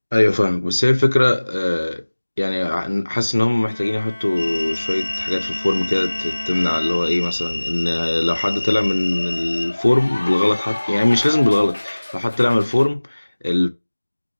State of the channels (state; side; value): inverted; both; correlation -1.00